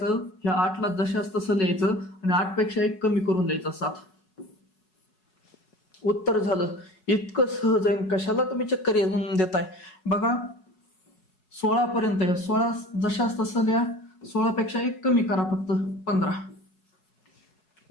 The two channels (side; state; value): right; late; 4.7 ms